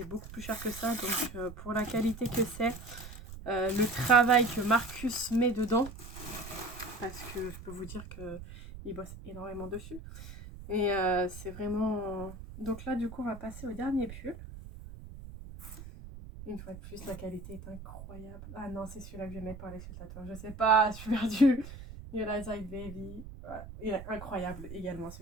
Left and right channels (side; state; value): right; noise; rumble, 13 dB below the sound